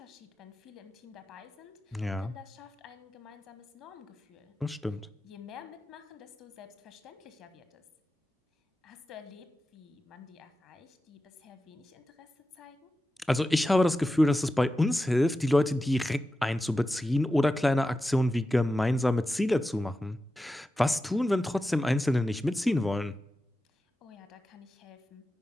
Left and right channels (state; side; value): normal; both; correlation 0.92